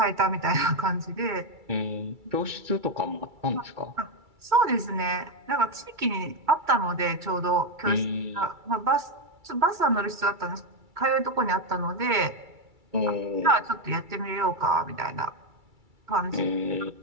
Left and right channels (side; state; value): left; late; 2.3 ms